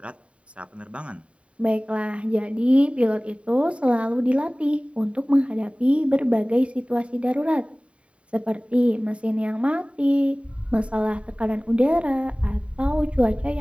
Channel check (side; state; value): left; late; 0.062 ms